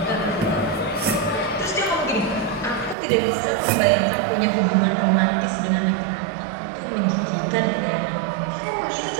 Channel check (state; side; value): drops out; left; at 3.0 s